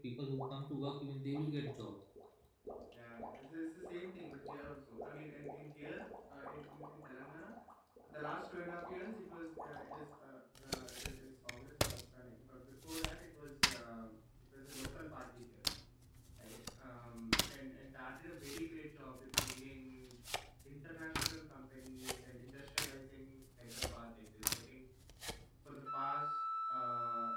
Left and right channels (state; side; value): identical; both; correlation 1.00